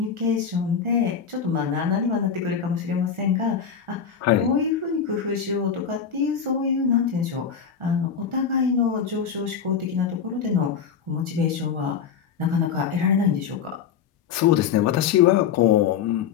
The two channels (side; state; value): right; quieter; 7.3 dB